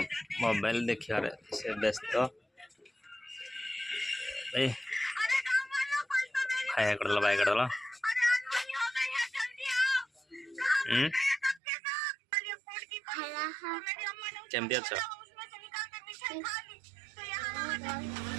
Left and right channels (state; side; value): drops out; left; at 11.6 s